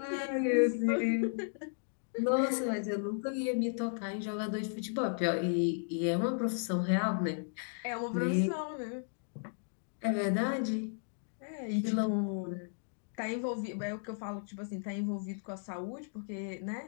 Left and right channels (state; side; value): silent; right; digital silence